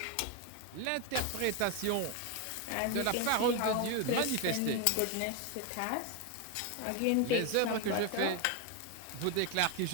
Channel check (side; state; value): both; different; correlation 0.01